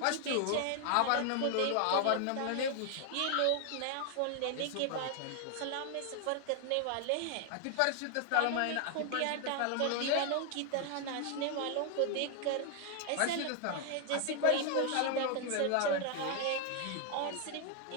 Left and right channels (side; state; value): both; different; correlation 0.00